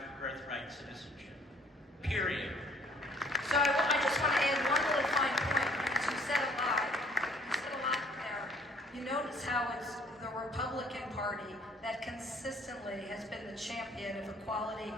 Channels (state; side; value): normal; both; correlation 0.59